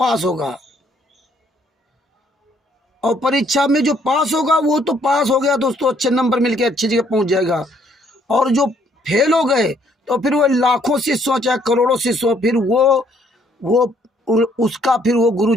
होगा, और परीक्षा में जो पास होगा वो तो पास हो गया, दोस्तों, अच्छे नंबर मिलके अच्छी जगह पहुंच जाएगा। और जो फेल हो गए तो फिर वो लाखों शिष्यों चाहे करोड़ों शिष्यों, फिर वो उसका फिर वो गुरु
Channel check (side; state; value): both; normal; correlation 0.66